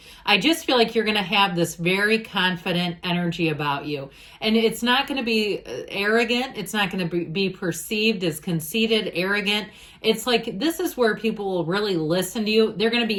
I just feel like you're going to have this very confident energy about you. And it's not going to be arrogant. It's not going to be perceived as conceited, arrogant. It's like this is where people will really listen to you. They're going to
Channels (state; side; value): identical; both; correlation 1.00